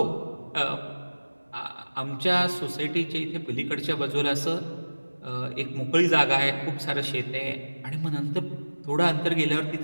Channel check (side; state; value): both; inverted; correlation -1.00